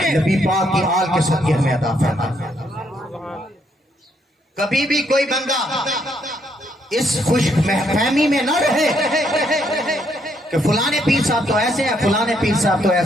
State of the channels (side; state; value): both; normal; correlation 0.73